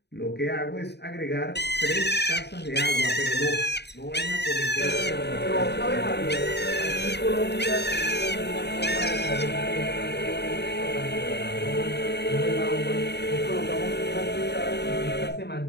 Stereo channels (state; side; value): late; right; 0.49 ms